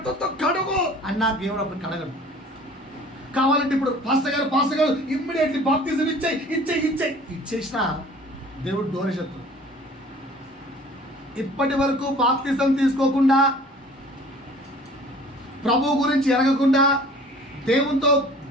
కడుగు అన్నా దేవుడు అప్పుడు కడగడు. కావాలంటే ఇప్పుడు పాస్టర్ గారు ఇమ్మీడియట్లీ బాప్టిజం ఇచ్చేసిన దేవుడు దూరశత్రుడు. ఇప్పటి వరకు బాప్తిజం తీసుకోకుండా, ప్రభు గురించి ఎరగకుండా, దేవునితో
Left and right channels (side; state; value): both; normal; correlation 0.48